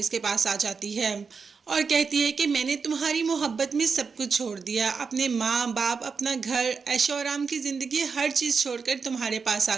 के पास आ जाती है और कहती है कि मैंने तुम्हारी मोहब्बत में सब कुछ छोड़ दिया, अपने माँ बाप, अपना घर, ऐशो आराम की ज़िंदगी, हर चीज़ छोड़कर तुम्हारे पास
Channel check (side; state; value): left; quieter; 5.3 dB